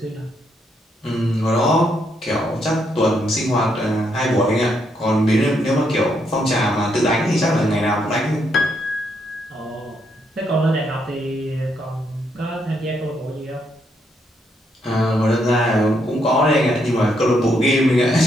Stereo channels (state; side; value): normal; both; correlation 0.76